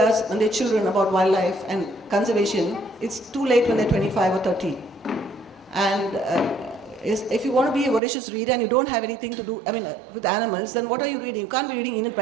and their children about wildlife and conservation, it's too late when they're 25 or 30. And if you want to be a voracious reader and you don't have anything to do, with animals, then what are you reading? You can't be reading Enid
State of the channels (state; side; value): drops out; left; at 8.0 s